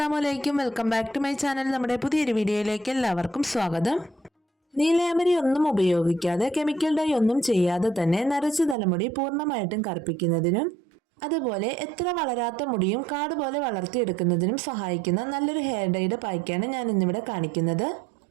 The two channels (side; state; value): left; drops out; at 8.8 s